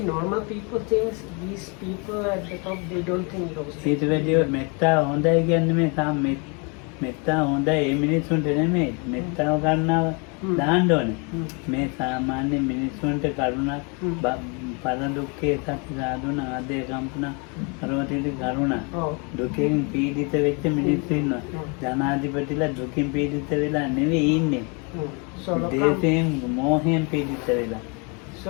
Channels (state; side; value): quieter; right; 33.4 dB